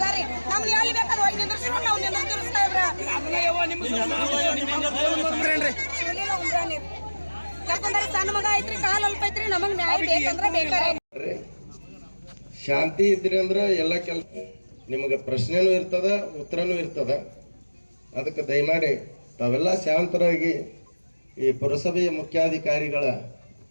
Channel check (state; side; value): inverted; both; correlation -1.00